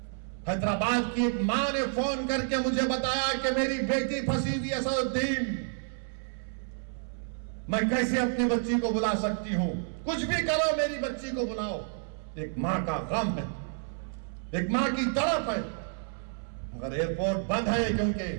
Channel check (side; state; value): left; silent; 58 dB below the other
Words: हैदराबाद की एक मां ने फोन करके मुझे बताया कि मेरी बेटी फंसी हुई है सऊदीन, मैं कैसे अपनी बच्ची को बुला सकती हूं? कुछ भी करो मेरी बच्ची को बुलाओ। एक मां का गम है, एक मां की तड़प है, मगर एयरपोर्ट बंद है क्योंकि